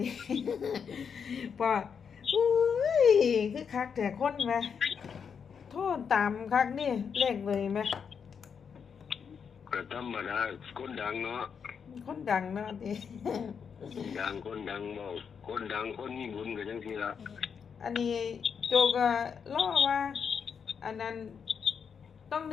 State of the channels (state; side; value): quieter; right; 6.7 dB